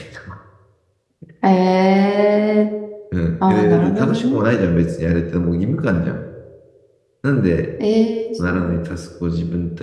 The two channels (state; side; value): identical; both; correlation 1.00